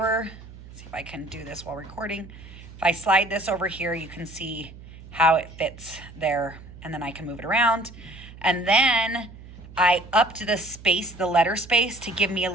see if I can do this while recording. If I slide this over here, you can see how it fits there, and then I can move it around. And then I upped the space, the letter space, to give me a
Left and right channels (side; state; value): right; noise; hum, 17 dB below the sound